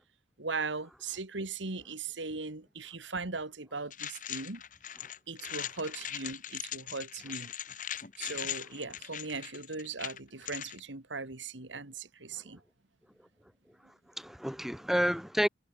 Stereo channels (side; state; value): both; normal; correlation 0.38